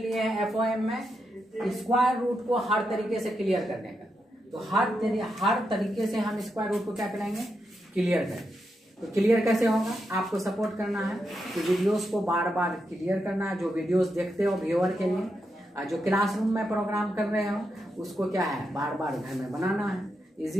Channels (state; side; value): normal; both; correlation 0.84